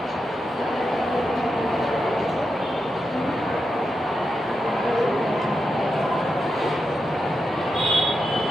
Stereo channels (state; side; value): normal; both; correlation 0.87